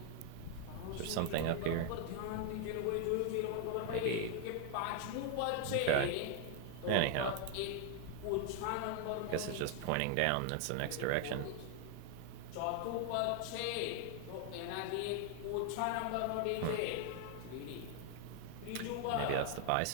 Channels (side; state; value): both; different; correlation 0.00